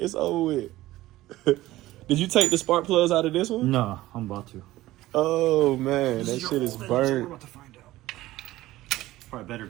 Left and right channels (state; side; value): quieter; left; 16.6 dB